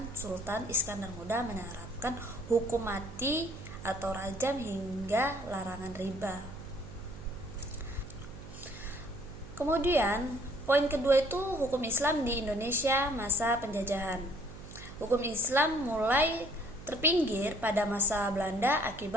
Sultan Iskandar Muda menerapkan hukum mati atau rajam hingga larangan riba. Kemudian poin kedua itu hukum Islam di Indonesia masa penjajahan. Hukum Islam mulai terpinggir pada masa Belanda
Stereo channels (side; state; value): right; noise; hum, 15 dB below the sound